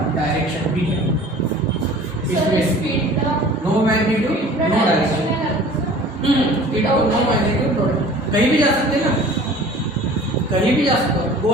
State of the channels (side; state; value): both; normal; correlation 0.45